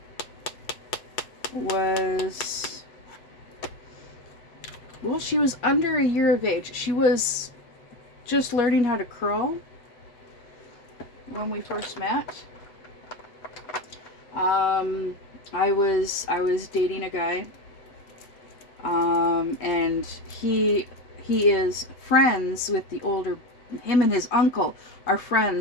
she was under a year of age. She was just learning how to crawl when we first met. I was dating a guy, and he is friends with the older Him and his uncle are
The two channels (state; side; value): late; right; 7.9 ms